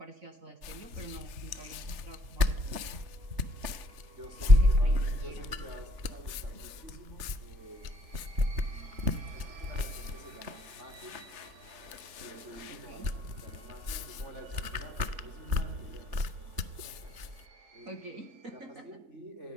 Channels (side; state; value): left; late; 3.4 ms